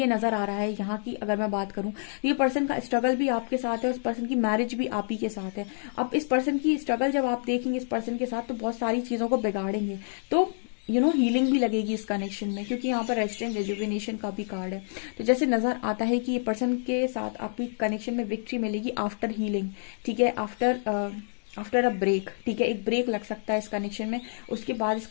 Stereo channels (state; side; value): silent; right; digital silence